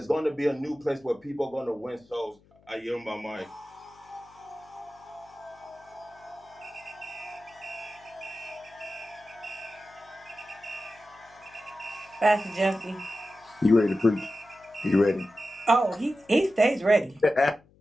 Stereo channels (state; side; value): noise; left; hum, 29 dB below the sound